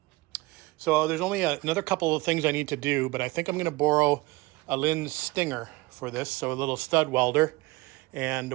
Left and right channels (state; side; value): quieter; left; 21.8 dB